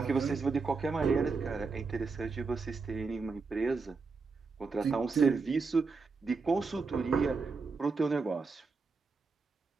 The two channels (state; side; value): quieter; left; 4.5 dB